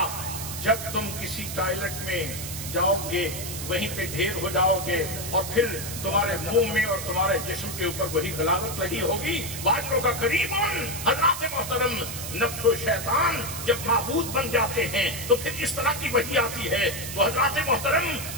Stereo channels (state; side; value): noise; right; hiss, 7 dB below the sound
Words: جب تم کسی ٹائلٹ میں جاؤ گے، وہیں پہ ڈھیر ہو جاؤ گے، اور پھر تمہارے منہ میں اور تمہارے جسم کے اوپر وہی غلاظت لگی ہوگی۔ واجروں کا قریب، حضرات محترم نفس و شیطان جب معبود بن جاتے ہیں تو پھر اس طرح کی وحی آتی ہے۔ تو حضرات محترم